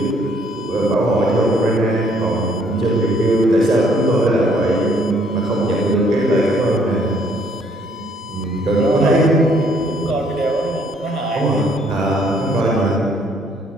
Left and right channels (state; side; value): normal; both; correlation 0.65